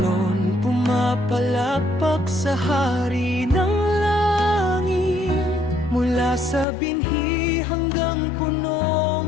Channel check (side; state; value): right; drops out; at 6.7 s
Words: pumapalakpak sa hari ng langit. Mula sa binhi hanggang